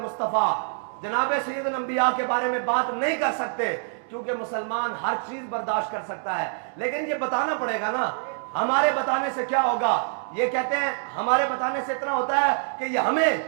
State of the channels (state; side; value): silent; left; digital silence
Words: मुस्तफ़ा जनाब सैयद अंबिया के बारे में बात नहीं कर सकते क्योंकि मुसलमान हर चीज बर्दाश्त कर सकता है लेकिन ये बताना पड़ेगा ना हमारे बताने से क्या होगा ये कहते हैं हमारे बताने से इतना होता है कि ये